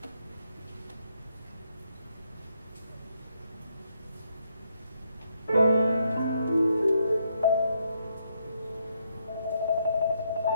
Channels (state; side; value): inverted; both; correlation -0.75